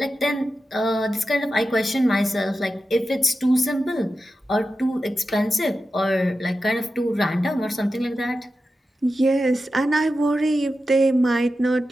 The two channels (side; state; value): both; normal; correlation 0.92